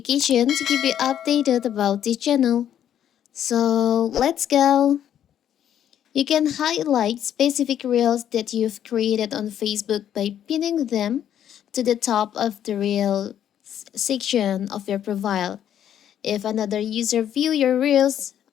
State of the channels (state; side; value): quieter; right; 10.1 dB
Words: to keep you updated about this channel. So let's go. You can highlight specific reels that you've created on Facebook by pinning them to the top of the reel section of your profile. If another user view your reels